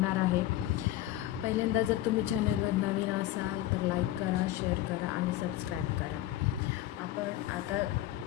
आहे. पहिल्यांदा जर तुम्ही चॅनलवर नवीन असाल तर लाईक करा, शेअर करा आणि सबस्क्राईब करा. आपण आता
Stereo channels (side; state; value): right; quieter; 14.1 dB